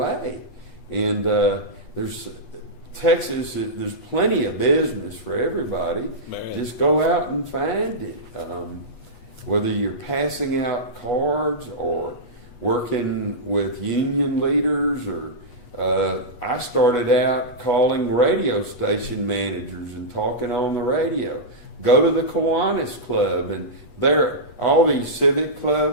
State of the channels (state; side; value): late; right; 8.2 ms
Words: And there's Texas, there's plenty of business for everybody. Man. Just go out and find it. Whether you're passing out cards or working with union leaders, or I started out calling radio station managers and talking on the radio. Go to the Kiwanis Club, and there all these civic